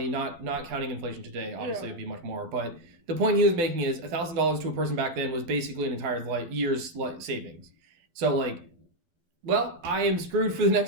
not counting inflation today, obviously it would be much more. But the point he was making is $1,000 to a person back then was basically an entire year's savings. So like, well, I am screwed for the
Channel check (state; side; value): late; left; 12 ms